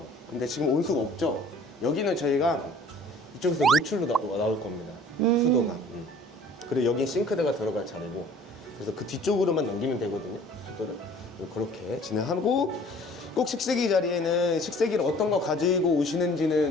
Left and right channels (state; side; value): normal; both; correlation 0.51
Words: 근데 지금 온수가 없죠? 여기는 저희가 이쪽에서 노출로 나올 겁니다. 수도가. 그리고 여긴 싱크대가 들어갈 자리고 그래서 그 뒤쪽으로만 넘기면 되거든요. 수도를. 그렇게 진행하고 꼭 식세기 자리에는 식세기를 어떤 거 가지고